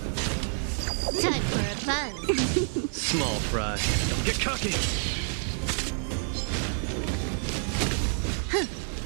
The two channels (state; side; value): silent; left; 57 dB below the other